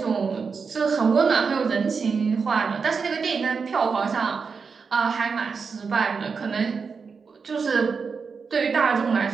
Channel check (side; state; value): left; quieter; 5.3 dB